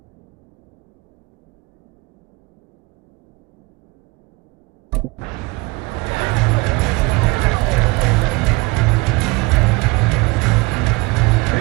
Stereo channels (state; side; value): quieter; left; 24.7 dB